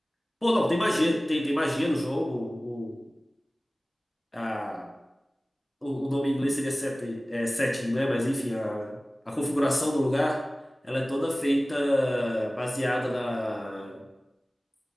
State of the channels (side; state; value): both; normal; correlation 0.98